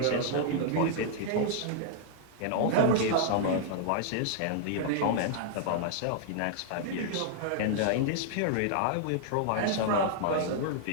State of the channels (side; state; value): both; different; correlation -0.01